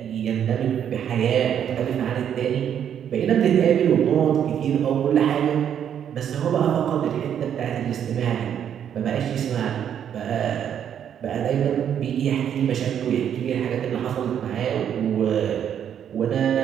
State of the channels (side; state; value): left; quieter; 9.1 dB